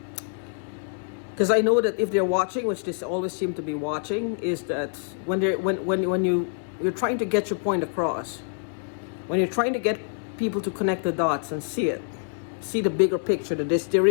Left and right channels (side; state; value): right; silent; 61 dB below the other